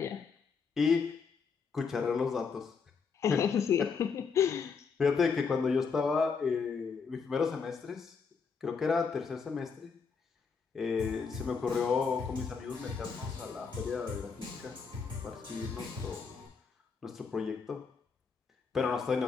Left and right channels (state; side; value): quieter; right; 5.5 dB